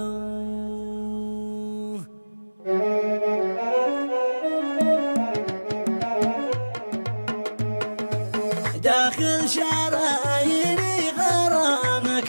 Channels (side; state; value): both; inverted; correlation -1.00